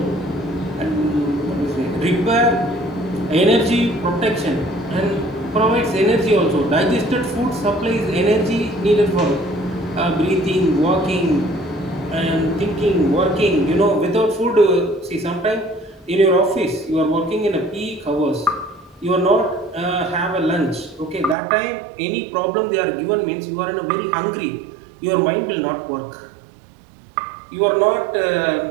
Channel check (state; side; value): drops out; left; at 21.4 s